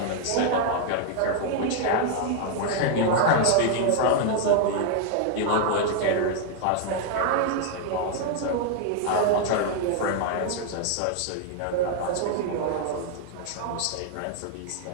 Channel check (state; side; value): different; both; correlation 0.00